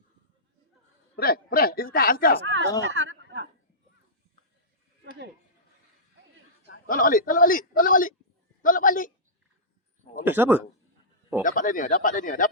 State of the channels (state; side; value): normal; both; correlation -0.17